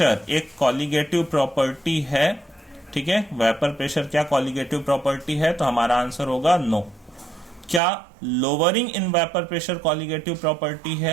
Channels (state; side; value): drops out; left; at 7.8 s